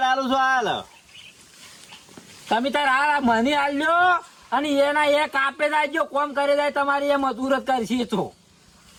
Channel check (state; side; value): identical; both; correlation 1.00